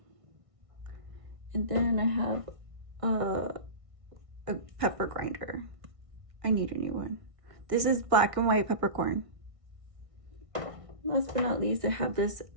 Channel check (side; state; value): left; late; 1.6 ms